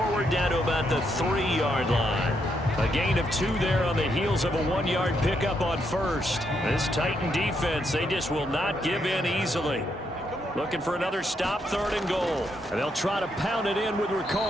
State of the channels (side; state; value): both; normal; correlation 0.78